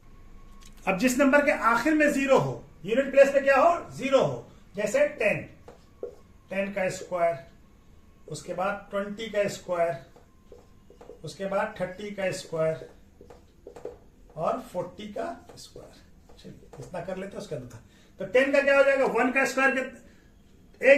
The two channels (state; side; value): identical; both; correlation 1.00